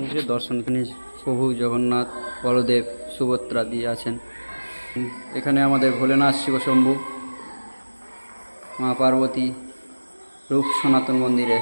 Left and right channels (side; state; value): both; inverted; correlation -1.00